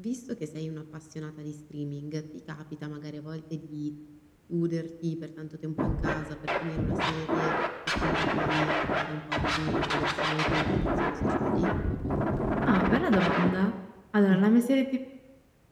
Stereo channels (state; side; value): identical; both; correlation 1.00